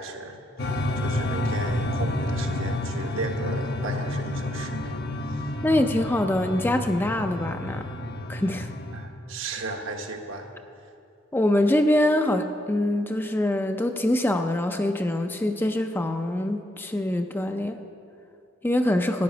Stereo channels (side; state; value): both; normal; correlation 0.79